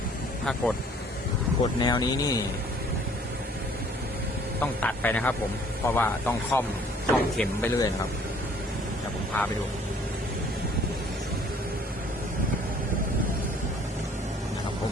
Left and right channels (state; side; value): normal; both; correlation 0.57